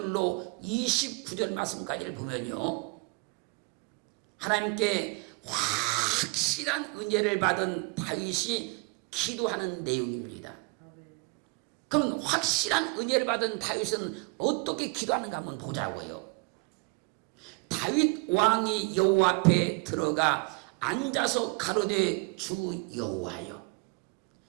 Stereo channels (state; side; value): quieter; left; 30.4 dB